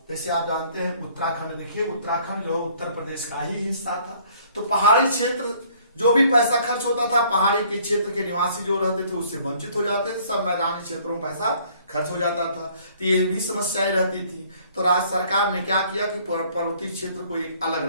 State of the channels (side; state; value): both; inverted; correlation -0.59